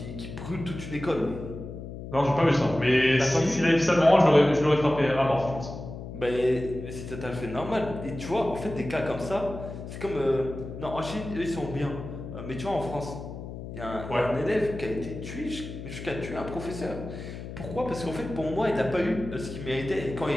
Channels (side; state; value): left; noise; hum, 10 dB below the sound